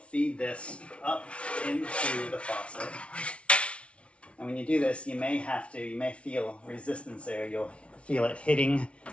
this up into the faucet. And when you do this, you may feel resistance there. You'll feel it hitting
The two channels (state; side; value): late; right; 0.061 ms